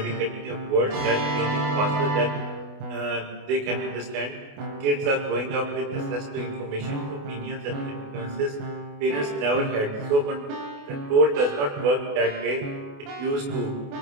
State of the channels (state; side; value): late; left; 28 ms